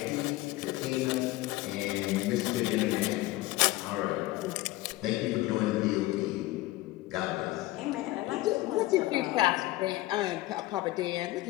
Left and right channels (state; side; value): quieter; right; 18.3 dB